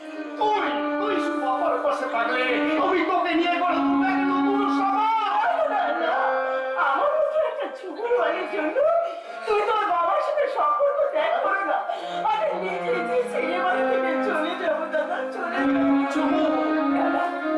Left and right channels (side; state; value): both; identical; correlation 1.00